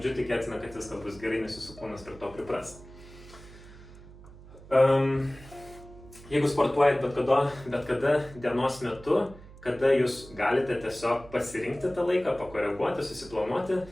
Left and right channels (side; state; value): right; noise; hum, 19 dB below the sound